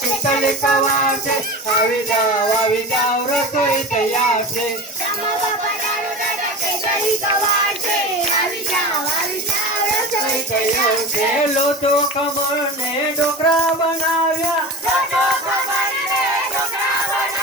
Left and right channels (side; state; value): both; normal; correlation 0.30